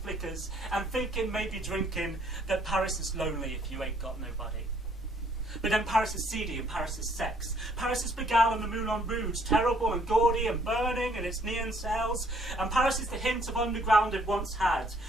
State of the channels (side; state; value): both; normal; correlation 0.64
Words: flickers, and thinking, maybe drinking, that Paris is lonely if you ain't got nobody. But then Paris is seedy and Paris is sex. Paris is Pigalle and the Moulin Rouge, terrible and gaudy and burning in its neon cells. And Paris is the hint of underground it once had,